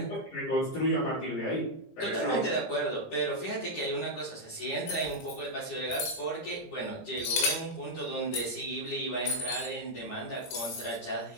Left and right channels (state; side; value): late; right; 17 ms